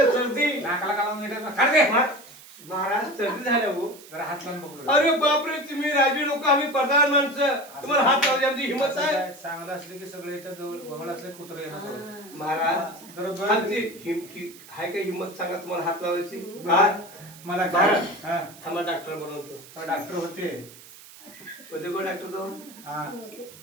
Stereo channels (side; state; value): right; noise; hiss, 19 dB below the sound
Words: सर्दी नाकाला काढून घेतात काढ दे. महाराज सर्दी झाल्या हो जरा हात लावून बघू. अरे बापरे तुम्ही राजी लोक आम्ही प्रधान माणसं तुम्हाला हात लावली आमची हिंमत आहे चांगलं असलं की सगळे इथं जवळ वगळ असले कुत्र येणार महाराज जरा आमची हाय का हिंमत सांगा तुम्हाला हात लावायची मला काय हा थांबा डॉक्टर बनवतो डॉक्टर होते होते कोण डॉक्टर तो हा